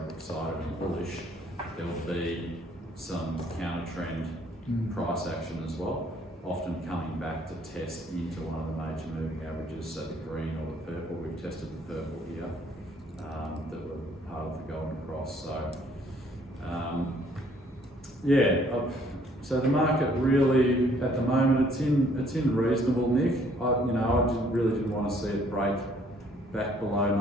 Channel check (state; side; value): normal; both; correlation 0.62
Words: excited and bullish, there'll be some counter trend price action as well, often coming back to test into one of the major moving averages, so the green or the purple. We've tested the purple here that were part of the golden cross. So so the market really at the moment it's in reasonable nick. I really didn't want to see it break back below